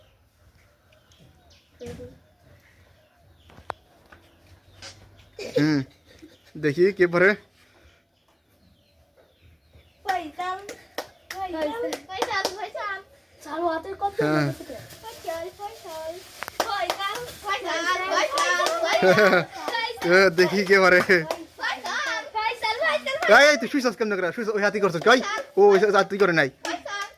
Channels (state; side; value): identical; both; correlation 1.00